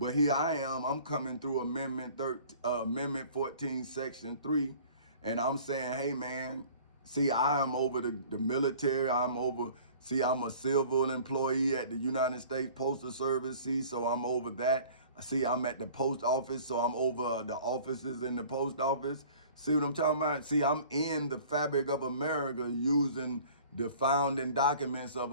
here I am, I'm coming through Amendment 14, Section 3, and I'm saying, hey man, see, I am over the military, I'm a civil employee at the United States Postal Service, see, so I'm over that. See, I'm at the post office, so I'm over the offices in the post office. See what I'm talking about? See, I'm in the fabric of America, using the founding documents of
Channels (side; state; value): both; inverted; correlation -0.48